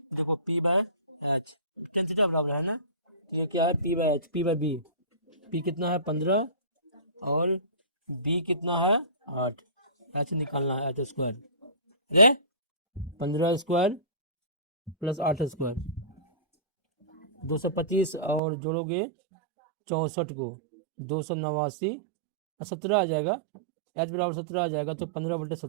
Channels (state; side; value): drops out; left; at 18.4 s